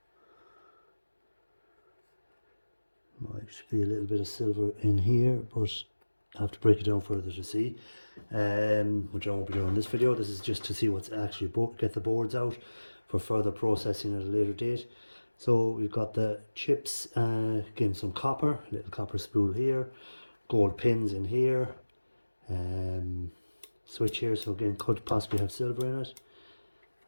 might be a little bit of silver in here, but I have to break it down further to see, which I won't be doing in this video. This is just to see what's actually get the boards out for further processing at a later date. So we've got the chips, again some copper, a little copper spool here. gold pins in here, switch here, so again could possibly have silver in it,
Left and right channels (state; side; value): inverted; both; correlation -1.00